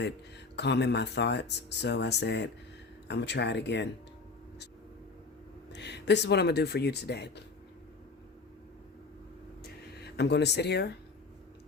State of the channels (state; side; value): quieter; right; 4.2 dB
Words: calming my thoughts. So I said, I'm going to try it again. This is what I'm going to do for you today. I'm going to sit here,